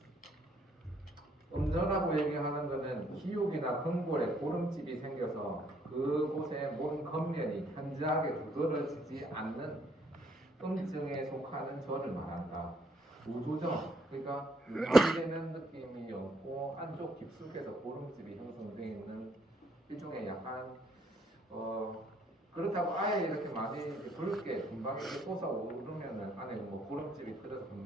음저라고 얘기하는 것은 기육이나 근골에 고름집이 생겨서 그곳에 몸 겉면이 현저하게 두드러지지 않는 음증에 속하는 저를 말한다. 우조정, 그러니까 유지되는 느낌이 없고 안쪽 깊숙해서 고름집이 형성되어 있는 일종의 약간 그렇다고 아예 이렇게 많이 붉게 금방 이렇게 솟아오르면은 안에 뭐 고름집이 들어서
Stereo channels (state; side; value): normal; both; correlation 0.68